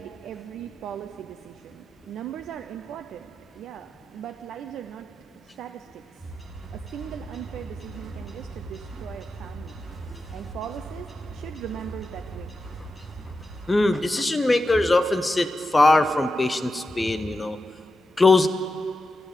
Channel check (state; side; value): normal; both; correlation 0.89